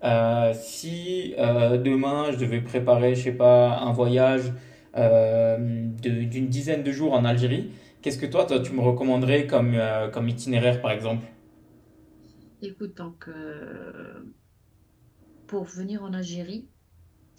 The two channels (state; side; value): identical; both; correlation 1.00